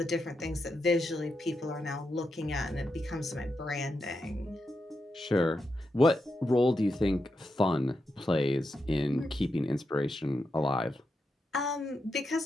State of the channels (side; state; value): both; normal; correlation 0.86